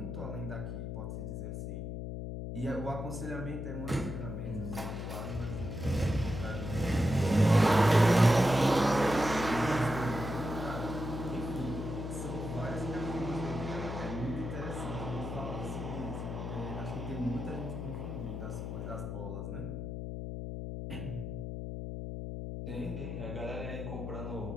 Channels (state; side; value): noise; left; hum, 5 dB below the sound